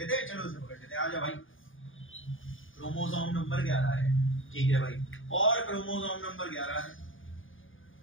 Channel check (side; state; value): right; late; 0.58 ms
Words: हैं, चलो इसे पकड़ लेते हैं। आ जा भाई, क्रोमोसोम नंबर 11 है, ठीक है भाई, और क्रोमोसोम नंबर 11 है,